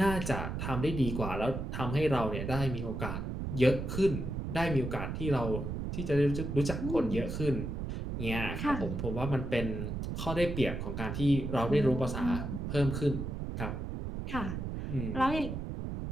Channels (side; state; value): right; noise; rumble, 4 dB below the sound